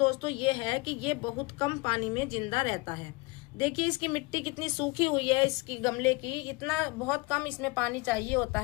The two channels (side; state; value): right; quieter; 25.1 dB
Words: ये है कि ये बहुत कम पानी में जिंदा रहता है। देखिए, इसकी मिट्टी कितनी सूखी हुई है, इसकी गमले की, इतना बहुत कम इसमें पानी चाहिए होता